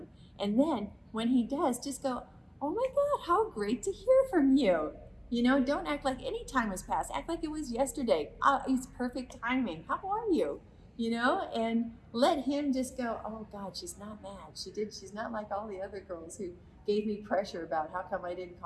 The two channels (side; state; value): both; identical; correlation 1.00